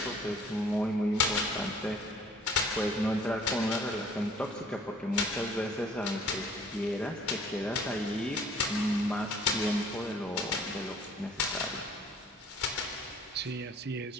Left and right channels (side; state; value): both; normal; correlation 0.54